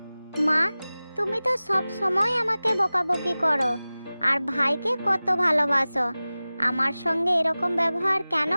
মা, তুমি তো সব সময় আমাকে বকাবকি করো আর ভাইকে কত ভালোবাসো। আমার সঙ্গে এরকম ব্যবহার কেন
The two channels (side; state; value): both; inverted; correlation -0.98